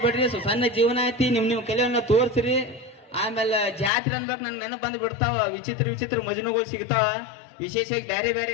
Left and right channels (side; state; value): right; drops out; at 3.9 s